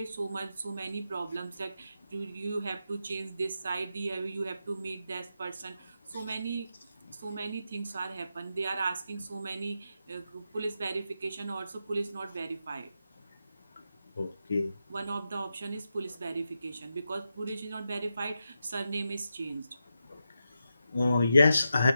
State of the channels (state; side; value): inverted; both; correlation -0.87